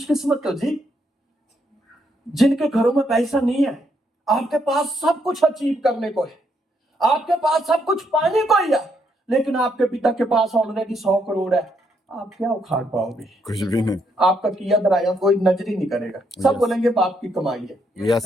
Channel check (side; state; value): both; normal; correlation 0.75